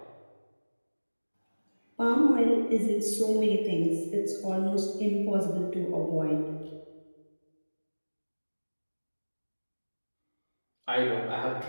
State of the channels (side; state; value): both; inverted; correlation -1.00